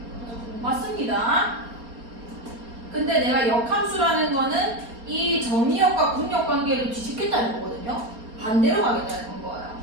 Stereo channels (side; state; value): left; late; 4.3 ms